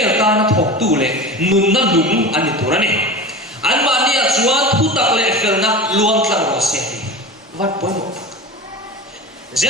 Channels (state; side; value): normal; both; correlation 0.31